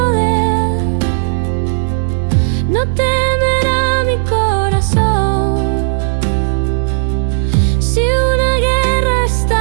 no temerá mi corazón. Si una guerra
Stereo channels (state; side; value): silent; left; digital silence